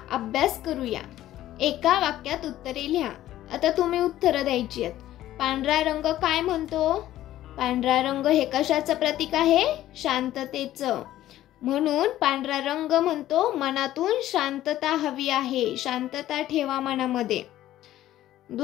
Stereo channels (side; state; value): right; quieter; 13.7 dB